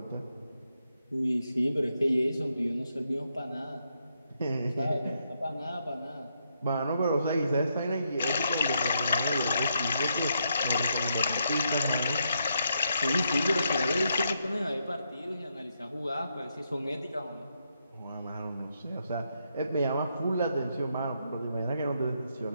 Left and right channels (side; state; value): both; inverted; correlation -0.79